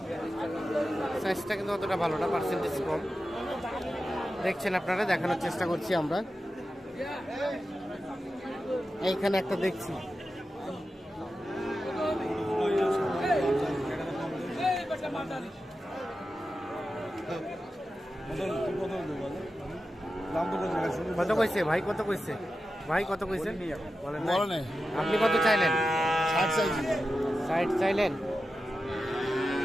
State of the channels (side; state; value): both; normal; correlation 0.91